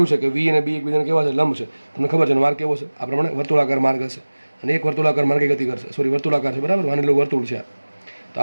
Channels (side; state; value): both; inverted; correlation -1.00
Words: છે કે વી અને બી એકબીજાને કેવા છે? લંબ છે. તમને ખબર છે માર્ગ કેવો છે? આ પ્રમાણે વર્તુળાકાર માર્ગ હશે અને એક વર્તુળાકાર માર્ગે ગતિ કરશે. સોરી, વર્તુળાકાર છે, બરાબર? માની લો વર્તુળ છે. તો